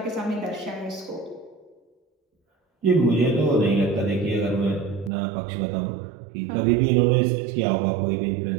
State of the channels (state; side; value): drops out; left; at 5.1 s